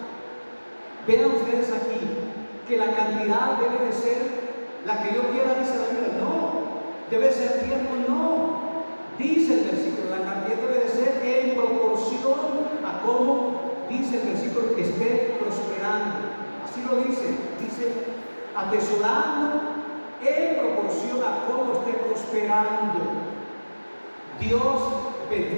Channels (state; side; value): inverted; both; correlation -1.00